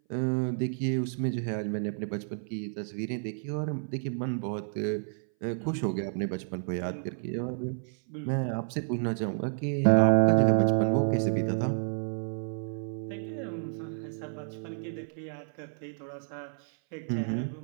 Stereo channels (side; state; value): left; silent; 58 dB below the other